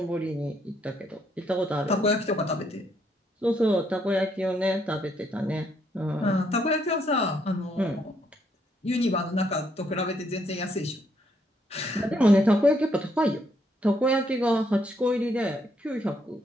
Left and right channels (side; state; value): both; normal; correlation 0.73